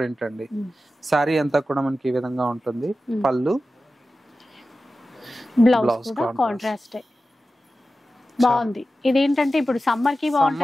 అండి. సారీ అంతా కూడా మనకి ఈ విధంగా ఉంటుంది. పళ్ళు, బ్లౌజ్ కాంట్రాస్ట్ బాగుంది. ఇదేంటంటే ఇప్పుడు సమ్మర్ కి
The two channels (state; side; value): normal; both; correlation 0.94